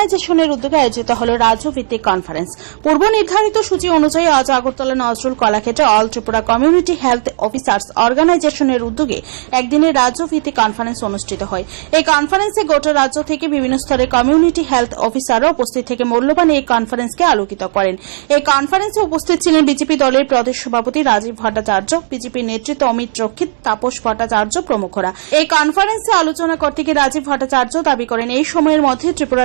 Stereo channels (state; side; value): silent; left; digital silence